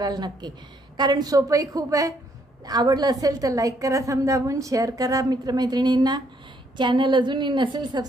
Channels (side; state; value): both; normal; correlation 0.70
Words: नक्की, कारण सोपंही खूप आहे. आवडलं असेल तर लाईक करा, थंब दाबून शेअर करा मित्रमैत्रिणींना. चॅनल अजूनही नसेल